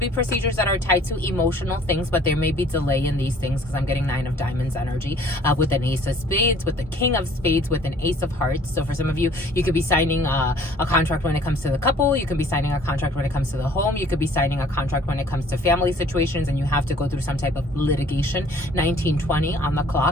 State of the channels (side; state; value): both; normal; correlation 0.55